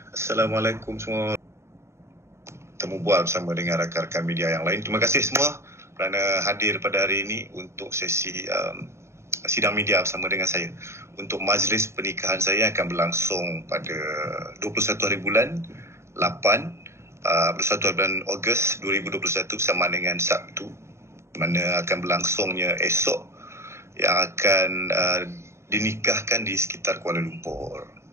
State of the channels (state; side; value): late; left; 0.13 ms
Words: Assalamualaikum semua. Temu bual bersama dengan rakan-rakan media yang lain. Terima kasih semua kerana hadir pada hari ini untuk sesi sidang media bersama dengan saya. Untuk majlis pernikahan saya akan berlangsung pada 21 hari bulan 8 21 bulan Ogos 2021 bersama dengan Sabtu, mana akan berlangsungnya esok, yang akan dinikahkan di sekitar Kuala Lumpur.